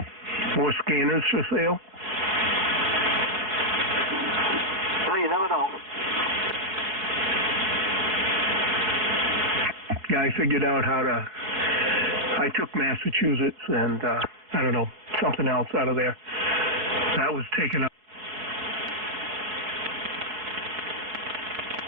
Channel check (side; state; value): left; late; 4.8 ms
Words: More scanners for sale? Well, you never know. Yeah, I figured out how to... I took Massachusetts and, I don't know, something else out of there. That was taken up.